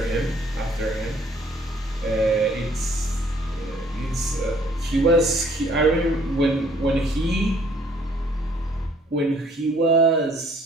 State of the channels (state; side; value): normal; both; correlation 0.60